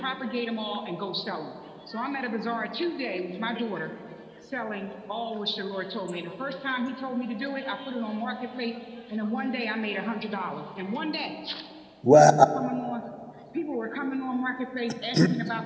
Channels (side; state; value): both; identical; correlation 1.00